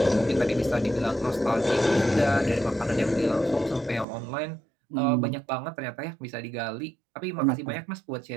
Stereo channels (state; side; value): drops out; left; at 4.0 s